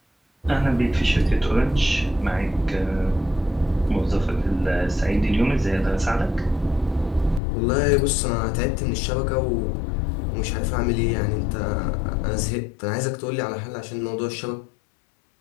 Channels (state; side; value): drops out; right; at 7.4 s